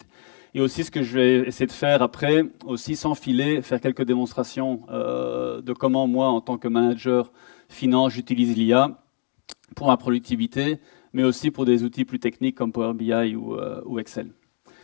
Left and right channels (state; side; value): silent; right; digital silence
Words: et aussi ce que je vais essayer de faire après, aussi sans filer, faire quelques démonstrations de comment moi, en tant que manager finance, j'utilise l'IA pour ma productivité, mais aussi pour des outils plus techniques comme Power BI ou Excel.